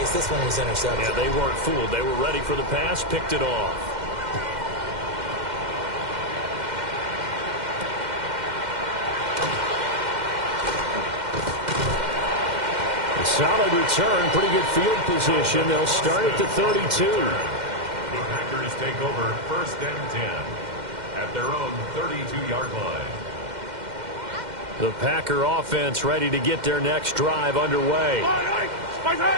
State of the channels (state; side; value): late; left; 2.1 ms